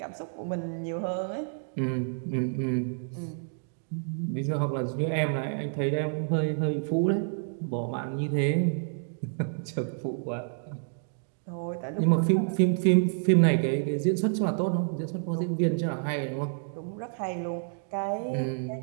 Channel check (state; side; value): silent; left; digital silence